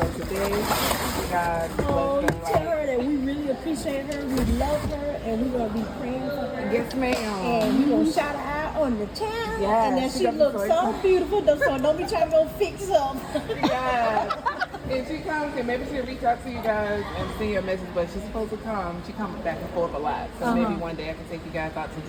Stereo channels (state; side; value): identical; both; correlation 1.00